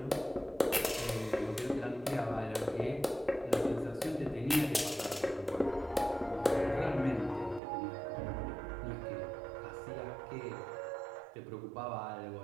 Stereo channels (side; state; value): left; drops out; at 7.6 s